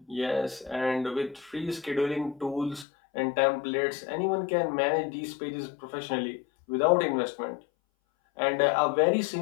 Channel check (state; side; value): drops out; right; at 2.9 s